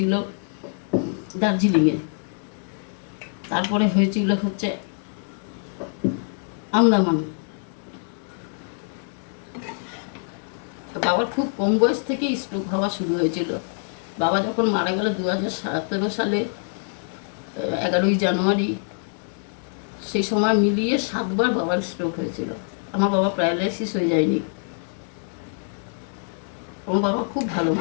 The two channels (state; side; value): silent; right; digital silence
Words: দার্জিলিংয়ে, তারপরে হয়েছিল হচ্ছে আন্দামান। বাবার খুব কম বয়স থেকেই স্ট্রোক হওয়া শুরু হয়েছিল। বাবা যখন মারা গেল 2017 সালে 11ই জানুয়ারি, সেই সময় মিলিয়ে 7 বার বাবার স্ট্রোক হয়েছিল। আমার বাবা প্যারালাইসিস হয়ে যায়নি। আমার বাবা খুব ভালো